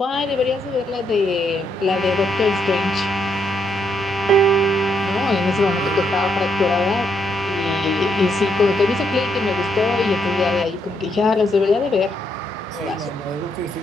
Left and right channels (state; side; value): normal; both; correlation 0.76